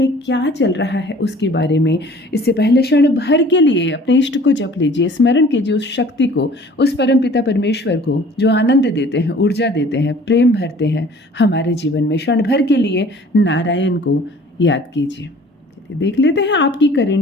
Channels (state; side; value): normal; both; correlation 0.50